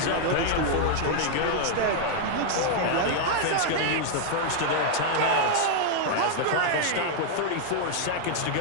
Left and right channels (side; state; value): both; different; correlation -0.01